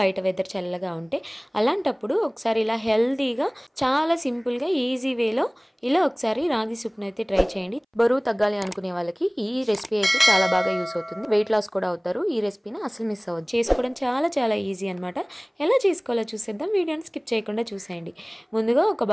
వెదర్ చల్లగా ఉంటే. అలాంటప్పుడు ఒకసారి ఇలా హెల్తీగా, చాలా సింపుల్గా, ఈజీ వేలో ఇలా ఒకసారి రాగి సూప్ని అయితే ట్రై చేయండి. బరువు తగ్గాలి అనుకునే వాళ్ళకి ఈ రెసిపీ అయితే చాలా బాగా యూస్ అవుతుంది. వెయిట్ లాస్ కూడా అవుతారు. ఈ రెసిపీని అసలు మిస్ అవ్వదు. చేసుకోవడం చాలా చాలా ఈజీ అనమాట. ఎలా చేసుకోవాలో చూసేద్దాం. వీడియోని స్కిప్ చేయకుండా చూసేయండి. ముందుగా ఒక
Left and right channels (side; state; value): both; identical; correlation 1.00